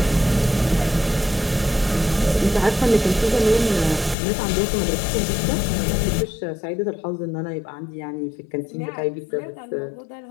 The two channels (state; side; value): drops out; right; at 4.2 s